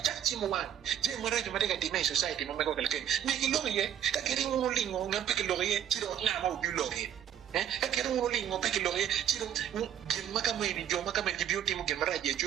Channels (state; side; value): quieter; left; 9.8 dB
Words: chimo wan je mara je mateka dimay society mo meko kalke mi ki lo ye ka kiri mo lingo ngam pe ki lo ye chiro na ma u lo ye ka kiri mo lingo pe ki lo ye chiro gin maka mai ni jo maka mai ki beauty mo gin mara je